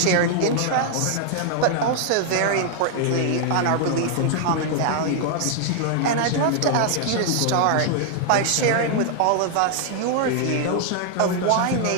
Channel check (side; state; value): both; different; correlation 0.00